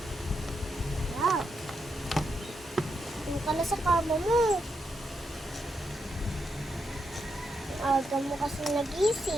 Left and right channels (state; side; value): normal; both; correlation 0.82